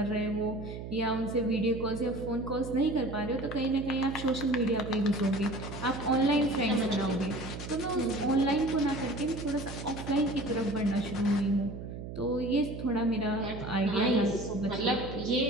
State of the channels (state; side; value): noise; right; hum, 9 dB below the sound